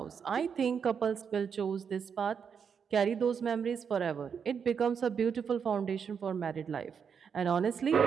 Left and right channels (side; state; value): left; quieter; 6.8 dB